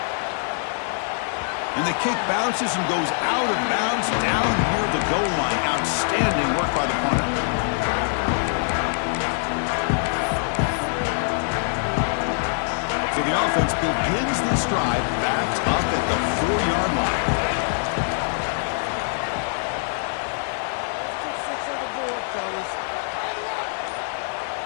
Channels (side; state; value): right; silent; digital silence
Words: And the kick bounces and goes out of bounds down near the goal line. Outstanding work by the punter. So the offense begins this drive backed up at the 4-yard line. Let's put 6 on the board, fellas.